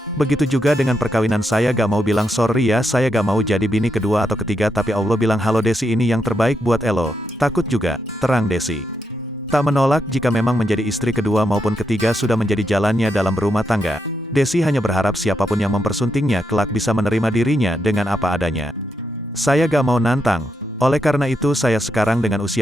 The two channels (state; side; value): normal; both; correlation 0.82